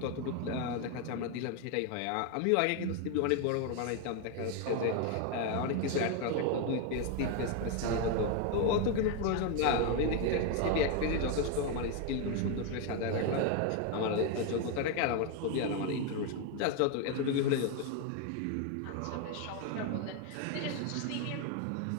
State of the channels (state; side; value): different; both; correlation 0.01